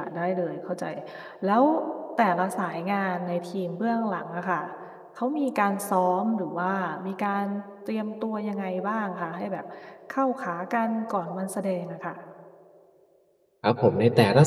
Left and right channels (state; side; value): identical; both; correlation 1.00